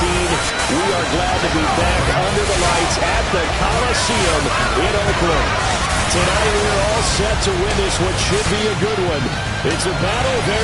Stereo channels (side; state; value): both; identical; correlation 1.00